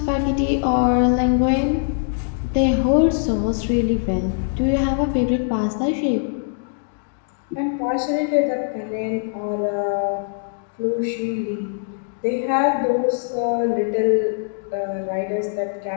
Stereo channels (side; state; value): right; silent; digital silence